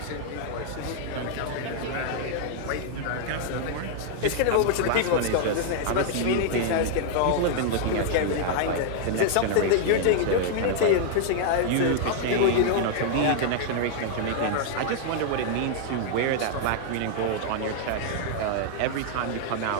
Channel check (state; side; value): different; both; correlation -0.01